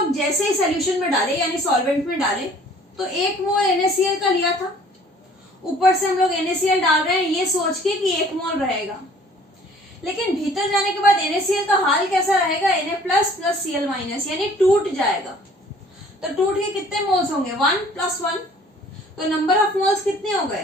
जैसे ही सॉल्यूशन में डाले यानी सॉल्वेंट में डाले तो 1 मोल NaCl का लिया था। ऊपर से हम लोग NaCl डाल रहे हैं ये सोच के कि 1 मोल रहेगा, लेकिन भीतर जाने के बाद NaCl का हाल कैसा रहेगा? Na plus plus Cl minus, यानी टूट जाएगा। तो टूट के कितने मोल्स होंगे? 1 + 1। तो नंबर ऑफ मोल्स कितने हो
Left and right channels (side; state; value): both; normal; correlation 0.54